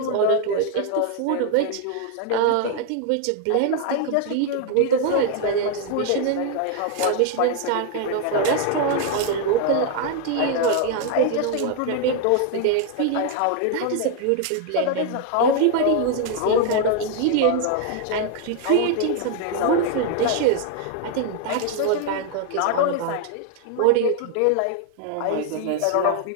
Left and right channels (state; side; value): different; both; correlation 0.00